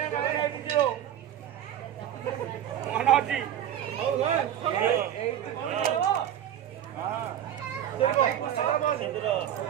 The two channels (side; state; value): left; quieter; 10.6 dB